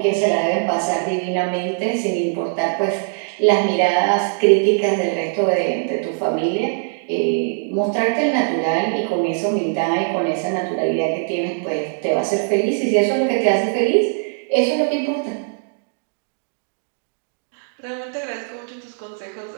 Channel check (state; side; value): silent; left; digital silence